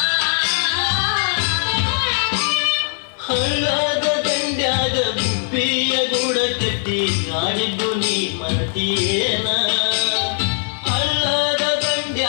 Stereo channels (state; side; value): silent; right; 66 dB below the other